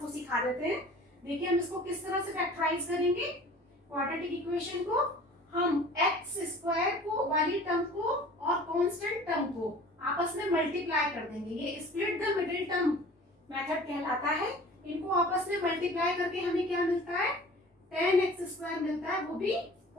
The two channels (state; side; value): normal; both; correlation 0.45